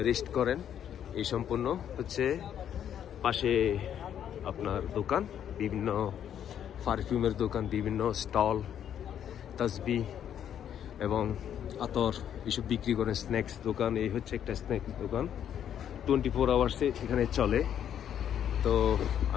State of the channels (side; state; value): right; quieter; 9.5 dB